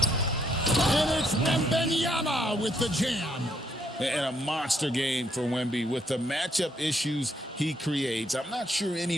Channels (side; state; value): both; normal; correlation 0.72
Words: And it's Wembanyama with the jam. And a monster game for Wemby with the matchup issues he creates. I'm not sure